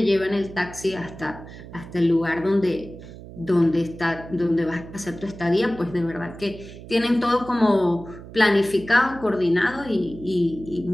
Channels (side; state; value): right; noise; hum, 15 dB below the sound